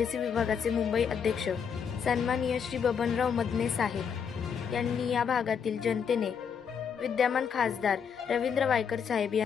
विभागाचे मुंबई अध्यक्ष सन्माननीय श्री बबनराव मदने साहेब यांनी या भागातील जनतेने विद्यमान खासदार रवींद्र वायकर साहेब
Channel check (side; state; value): right; quieter; 7.0 dB